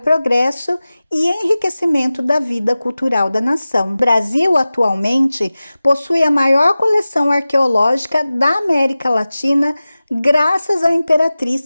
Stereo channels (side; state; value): both; inverted; correlation -0.96